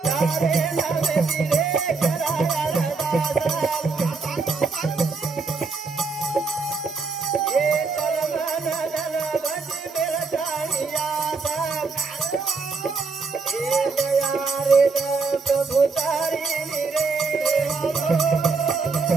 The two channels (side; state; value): left; quieter; 4.4 dB